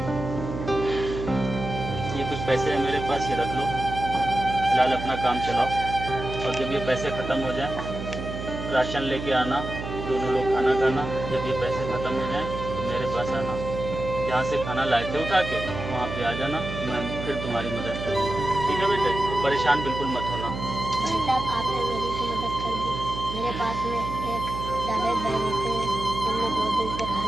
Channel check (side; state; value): right; noise; hum, 7 dB below the sound